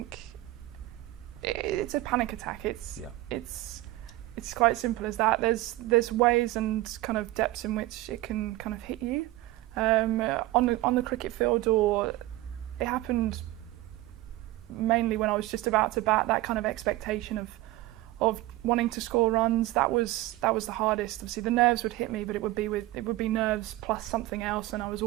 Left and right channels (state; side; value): quieter; left; 17.6 dB